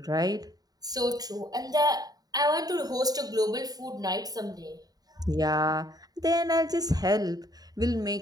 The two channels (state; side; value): late; left; 0.18 ms